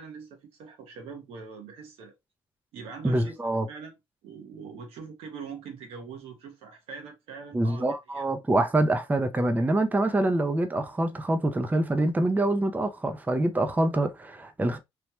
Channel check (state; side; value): normal; both; correlation 0.88